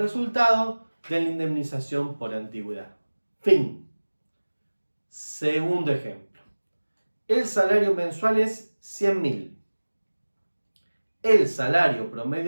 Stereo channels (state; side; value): inverted; both; correlation -1.00